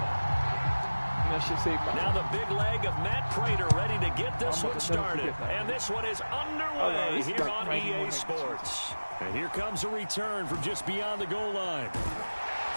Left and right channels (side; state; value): both; inverted; correlation -1.00